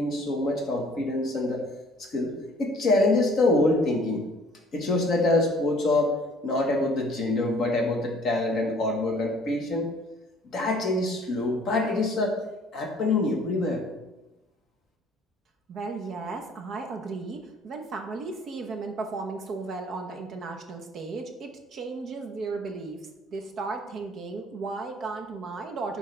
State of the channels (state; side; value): normal; both; correlation 0.55